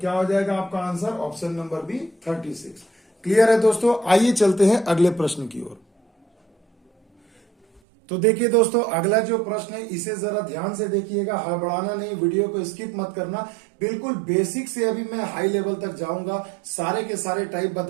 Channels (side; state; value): left; drops out; at 7.8 s